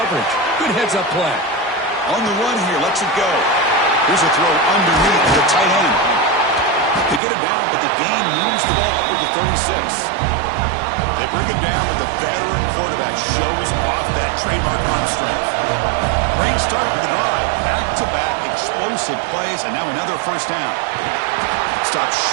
Good heads-up play. On the run here, lets it go. Here's a throw underneath the tight end. They get him down, but the gain moves the ball up to the 36. They bring him down, but the veteran quarterback shows off that trademark arm strength. Great start for the drive. Back-to-back explosive plays, and now another first down. Stopped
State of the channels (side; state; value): left; drops out; at 7.2 s